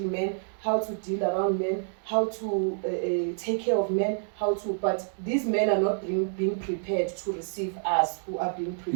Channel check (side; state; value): left; silent; digital silence